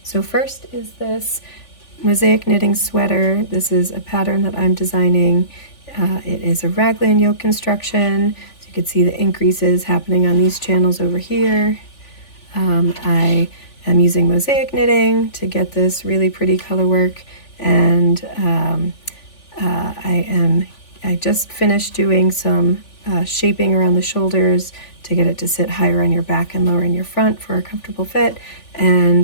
So first is this mosaic knitting sweater. This is a pattern that I'm designing. It is a raglan yoke construction, so you can see the increases happening on these channels over here. I am using mosaic knitting to get this really pretty color work, and I just finished doing some shaping around the shoulders to get it to sit higher on your back and lower in your front for a comfortable fit.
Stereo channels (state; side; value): late; right; 3.4 ms